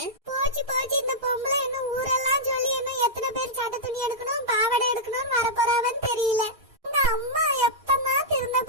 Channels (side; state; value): left; late; 3.9 ms